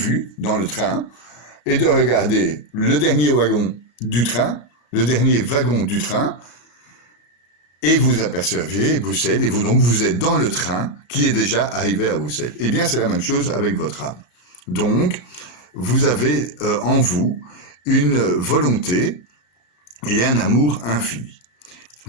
dans le train et de regarder le dernier wagon du train, le dernier wagon du train, et vous apercevez Bruxelles, et vous êtes dans le train qui est déjà arrivé à Bruxelles. Eh bien, c'est la même chose avec votre âme. Donc, vous avez en vous une volonté et un amour infini.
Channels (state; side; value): late; right; 33 ms